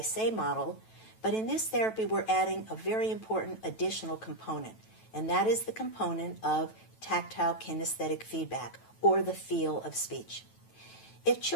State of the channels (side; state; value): right; late; 9.1 ms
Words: say model. But in this therapy, we're adding a very important additional component, and that is the component of tactile kinesthetic feedback, or the feel of speech. If